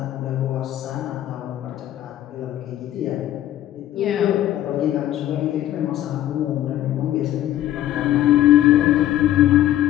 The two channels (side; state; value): right; quieter; 13.0 dB